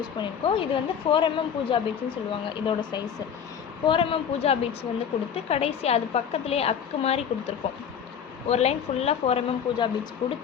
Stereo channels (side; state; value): right; quieter; 8.0 dB